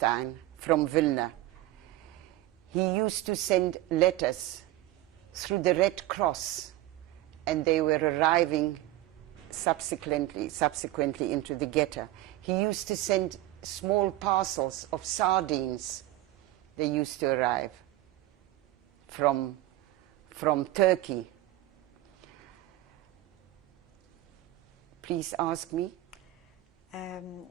from Vilna, he used to send letters through the Red Cross, and they were arriving subsequently into the ghetto. He used to send small parcels of sardines. They used to arrive from Turkey. Please ask me.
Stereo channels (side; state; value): left; quieter; 15.7 dB